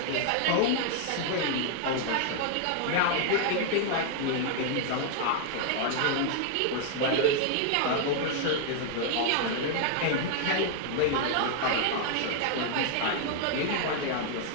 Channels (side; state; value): both; different; correlation 0.00